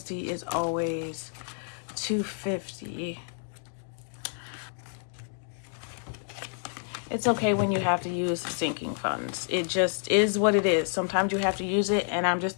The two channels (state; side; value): silent; right; 58 dB below the other